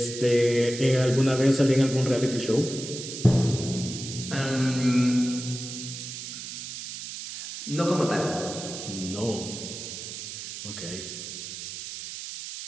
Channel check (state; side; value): noise; right; hiss, 9 dB below the sound